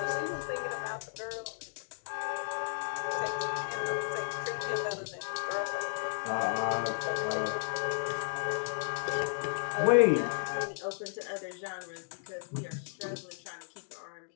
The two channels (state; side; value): silent; right; digital silence